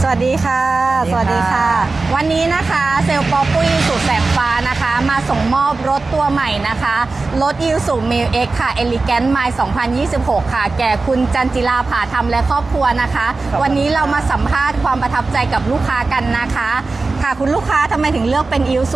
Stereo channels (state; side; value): quieter; left; 3.7 dB